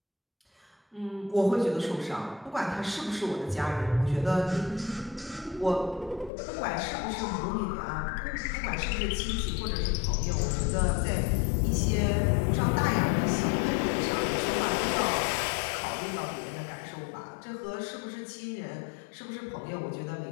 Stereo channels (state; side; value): drops out; right; at 6.3 s